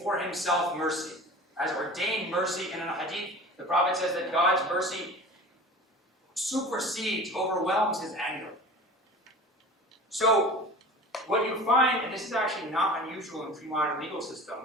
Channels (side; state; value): both; normal; correlation 0.38